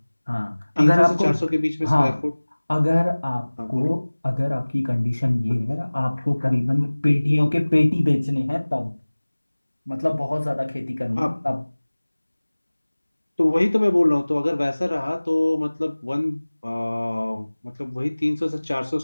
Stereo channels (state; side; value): inverted; both; correlation -1.00